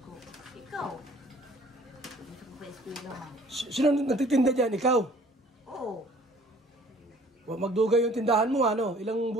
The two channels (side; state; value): both; normal; correlation 0.54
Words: ko. Ikaw. Gusto ko pa eskwela, mama. Sino nagtitinda dyan? Ikaw? Oo. Magdugay yung tindahan mo, ano? Ilang